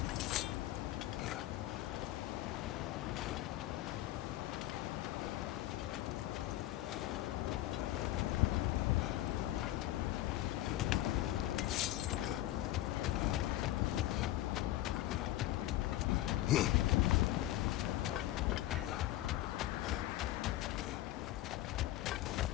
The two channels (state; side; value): quieter; right; 15.1 dB